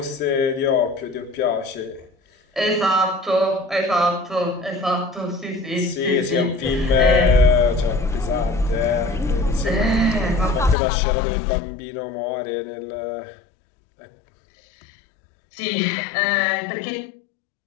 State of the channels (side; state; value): right; drops out; at 10.8 s